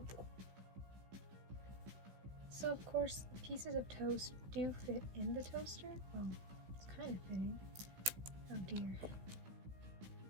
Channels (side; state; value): left; late; 16 ms